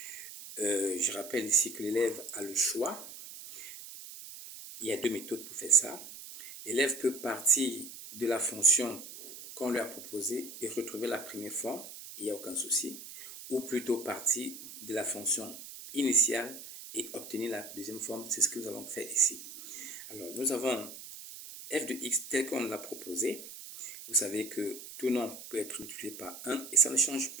Je rappelle ici que l'élève a le choix. Il y a deux méthodes pour faire ça. L'élève peut partir de la fonction qu'on lui a proposée et retrouver la première forme, il n'y a aucun souci. Ou plutôt partir de la fonction initiale et obtenir la deuxième forme, c'est ce que nous allons faire ici. Alors, nous avons f de x tel qu'on l'a proposé. Vous savez que tout nombre peut être multiplié par 1 et ça ne change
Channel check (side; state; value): right; noise; hiss, 13 dB below the sound